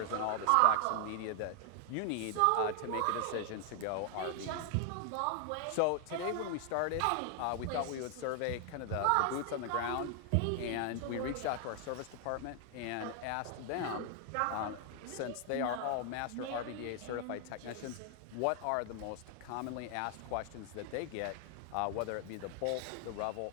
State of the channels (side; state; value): both; different; correlation 0.00